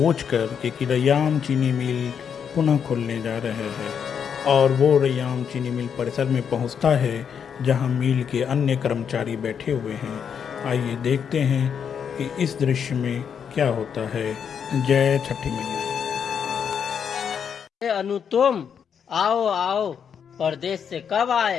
कि रैयाम चीनी मिल पुनः खुलने जा रहे हैं और वो रैयाम चीनी मिल परिसर में पहुंचता है जहां मिल के अन्य कर्मचारी बैठे हुए हैं। आइए देखते हैं कि इस दृश्य में क्या होता है। जय छठी मैया। अनु तुम आओ आओ, परदेश से कब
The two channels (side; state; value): right; quieter; 7.4 dB